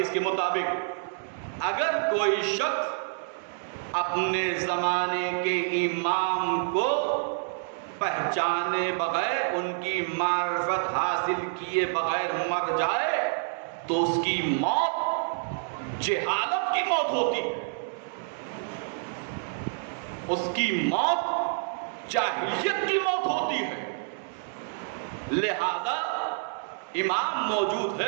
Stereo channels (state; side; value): silent; left; digital silence